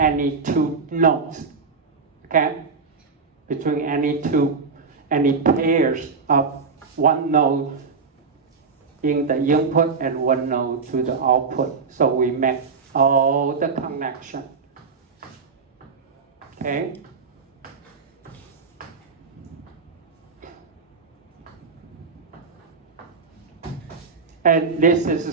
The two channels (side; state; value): left; quieter; 4.9 dB